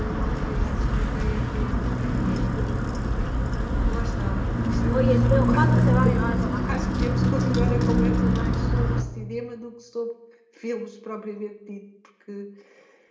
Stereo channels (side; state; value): both; identical; correlation 1.00